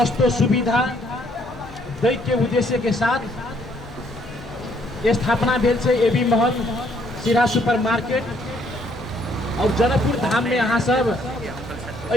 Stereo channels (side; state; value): both; normal; correlation 0.67